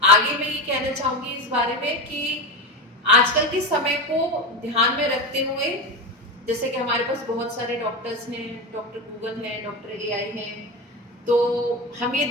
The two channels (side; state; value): both; normal; correlation 0.20